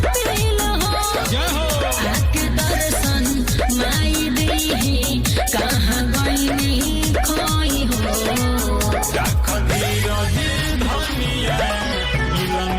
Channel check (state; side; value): identical; both; correlation 1.00